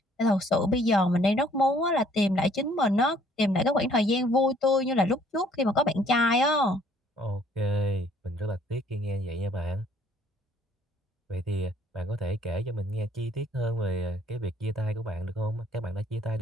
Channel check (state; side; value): normal; both; correlation 0.61